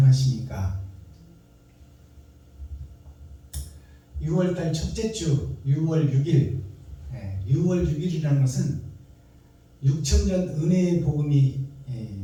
6월달 첫째 주 6월 6일 6월 6일이라는 것은 6천년 은혜의 복음이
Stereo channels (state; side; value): identical; both; correlation 1.00